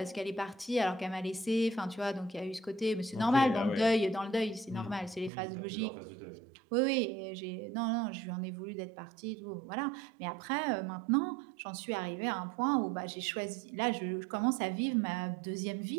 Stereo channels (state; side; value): drops out; left; at 5.3 s